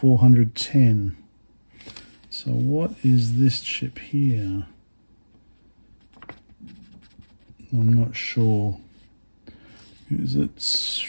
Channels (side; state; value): both; inverted; correlation -1.00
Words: So what is this chip here? I'm not sure. Is it